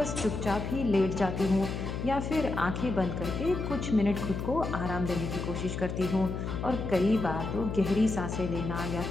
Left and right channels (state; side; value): noise; left; hum, 4 dB below the sound